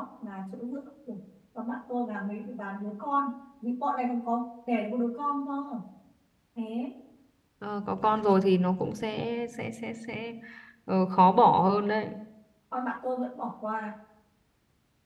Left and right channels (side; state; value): both; identical; correlation 1.00